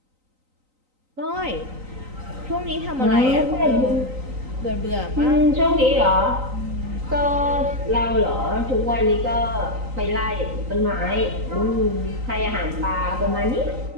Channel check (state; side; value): late; left; 3.9 ms